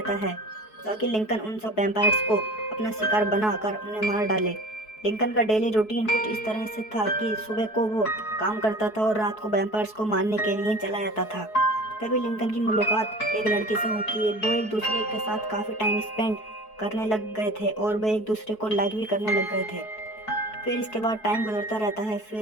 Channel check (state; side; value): late; right; 4.7 ms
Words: है ताकि लिंकन उन सब वैम्पायर्स को अपना शिकार बनाकर उन्हें मार डाले। लिंकन का डेली रूटीन कुछ इस तरह से था कि सुबह को वो काम करता था और रात को वैम्पायर्स को मारने के लिए चला जाता था। तभी लिंकन की मुलाकात एक लड़की से होती है। वो एक दूसरे के साथ काफ़ी टाइम स्पेंड करने लग गए थे और वे एक दूसरे को लाइक भी करने लग गए थे। फिर इसके बाद टाइम गुजरता रहता है।